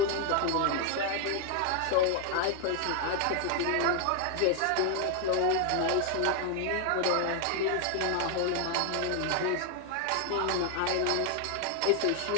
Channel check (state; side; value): different; both; correlation 0.01